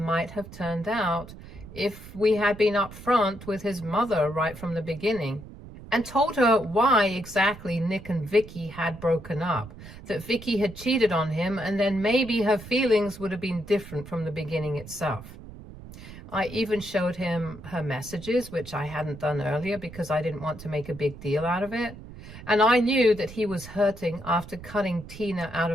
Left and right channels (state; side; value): noise; right; rumble, 15 dB below the sound